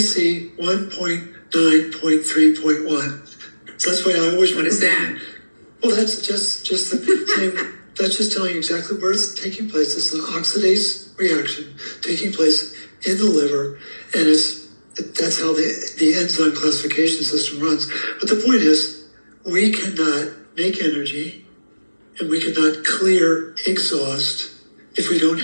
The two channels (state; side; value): inverted; both; correlation -1.00